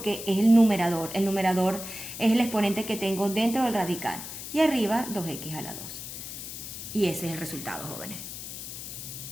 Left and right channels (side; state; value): left; noise; hiss, 9 dB below the sound